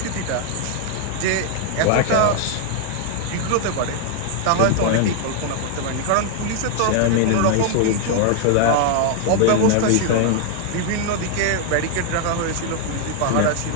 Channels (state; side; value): different; both; correlation 0.00